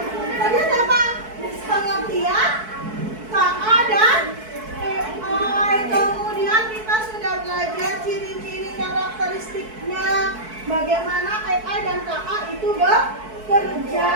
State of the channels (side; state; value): left; late; 4.6 ms